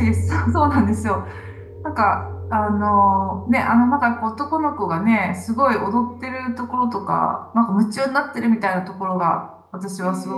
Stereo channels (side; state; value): both; identical; correlation 1.00